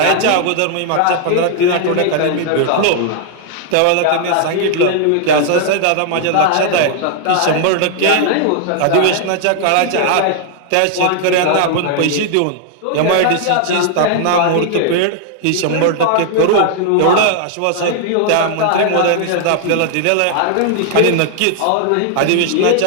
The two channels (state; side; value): different; both; correlation 0.00